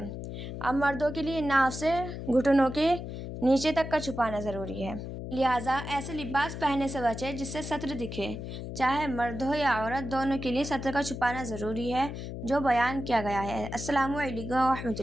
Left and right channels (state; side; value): noise; left; hum, 7 dB below the sound